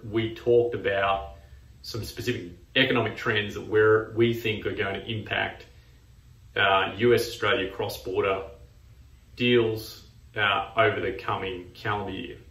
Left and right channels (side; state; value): both; identical; correlation 1.00